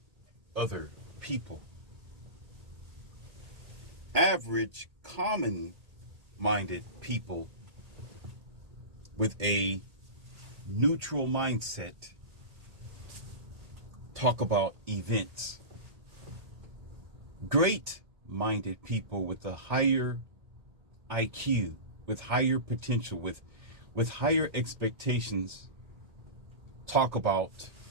other people. Average, common-minded people with a neutral mindset talk about events. Great-minded people with a higher IQ, with higher potential, with higher expectations, talk about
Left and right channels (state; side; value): late; left; 1.8 ms